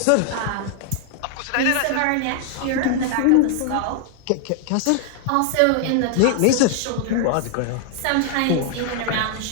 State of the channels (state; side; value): different; both; correlation 0.00